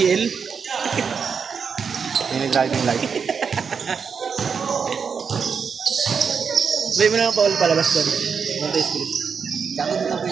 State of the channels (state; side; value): quieter; left; 6.1 dB